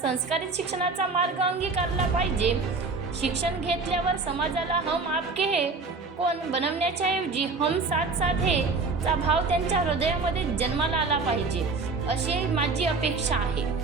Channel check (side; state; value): left; quieter; 4.1 dB